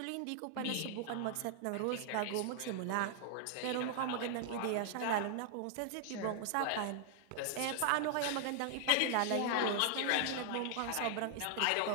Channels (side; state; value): both; different; correlation 0.00